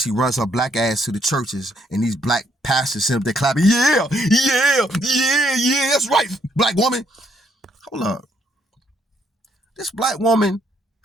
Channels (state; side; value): normal; both; correlation 0.71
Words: runs her black ass to the churches, and these black pastors sit up there clapping, yeah, that's right, black woman. Hold up. This black woman,